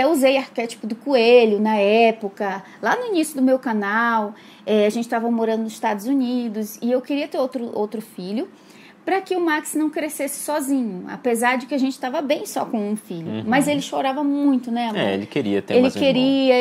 usei arquétipo do coelho na época, lá no início do meu canal, a gente estava morando nos Estados Unidos, e eu queria ter outro filho, para que o Max não crescesse sozinho, apesar de que a gente estava bem só com um filho. Mas ele chorava muito, né, amor? Ele queria ter mais um irmão.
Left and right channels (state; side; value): identical; both; correlation 1.00